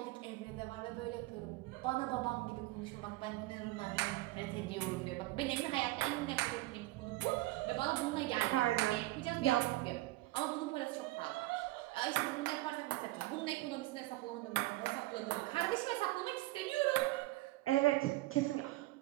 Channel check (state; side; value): quieter; left; 19.2 dB